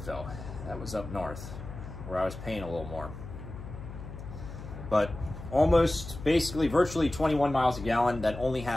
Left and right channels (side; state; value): left; noise; hum, 11 dB below the sound